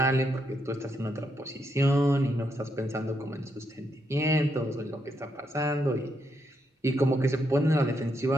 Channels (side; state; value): both; normal; correlation 0.79